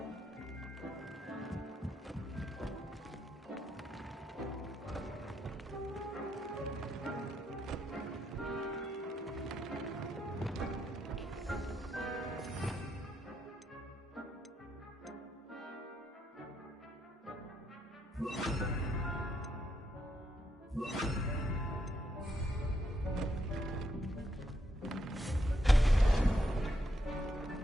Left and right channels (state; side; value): normal; both; correlation 0.78